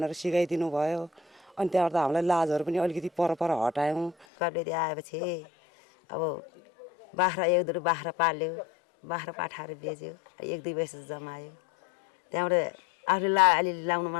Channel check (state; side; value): drops out; right; at 4.2 s